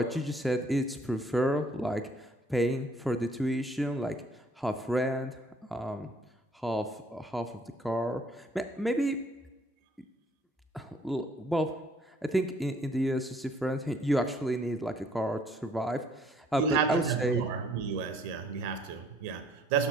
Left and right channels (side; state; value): both; normal; correlation 0.62